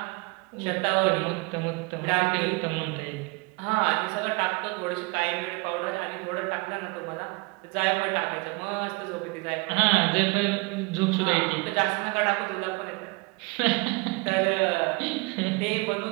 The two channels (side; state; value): left; quieter; 26.8 dB